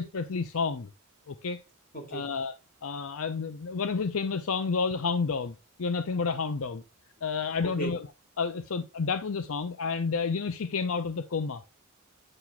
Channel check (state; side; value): quieter; right; 4.5 dB